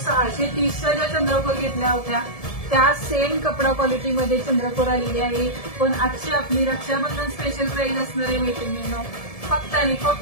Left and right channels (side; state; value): right; late; 1.7 ms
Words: ज्या चंद्रकोर घेतल्या होत्या त्या सेम कपडा क्वालिटी मध्ये चंद्रकोर आलेली आहे। पण आजची आपली रक्षाबंधन स्पेशल प्राइस असणार आहे मैत्रिणींनो, फक्त आणि